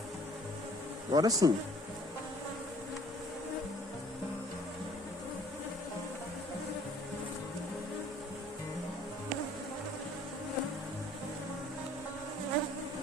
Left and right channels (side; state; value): both; normal; correlation 0.56